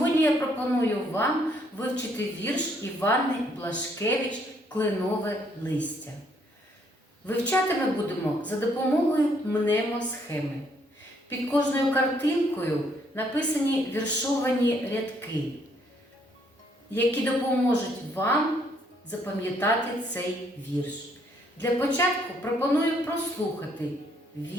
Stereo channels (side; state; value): both; normal; correlation 0.68